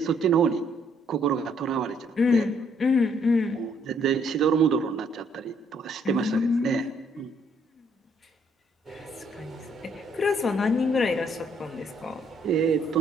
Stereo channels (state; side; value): normal; both; correlation 0.68